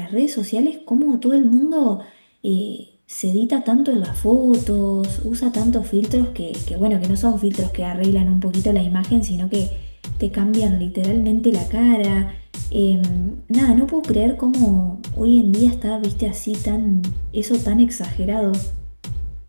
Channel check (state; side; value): inverted; both; correlation -1.00